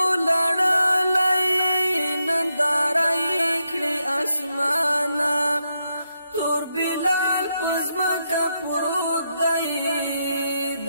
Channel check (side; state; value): both; inverted; correlation -0.83